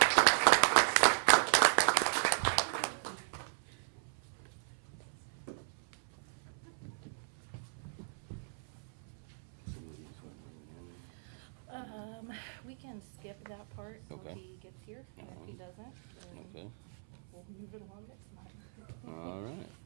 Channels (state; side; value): silent; left; 53 dB below the other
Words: We can skip that part until Okay. he gets here. And if he doesn't, then Okay. we'll move it along next time. All right.